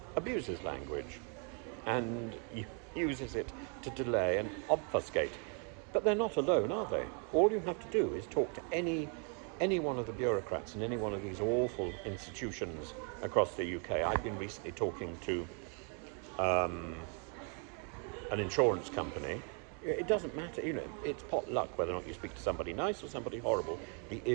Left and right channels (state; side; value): quieter; left; 39.1 dB